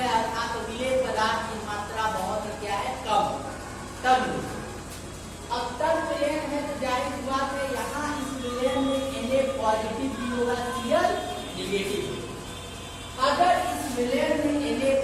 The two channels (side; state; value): both; identical; correlation 1.00